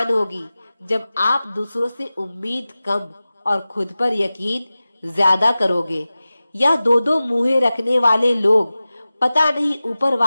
होगी जब आप दूसरों से उम्मीद कम और खुद पर यकीन ज्यादा करोगे। या दो मुंहें रखने वाले लोग पता नहीं ऊपर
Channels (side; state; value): both; inverted; correlation -0.96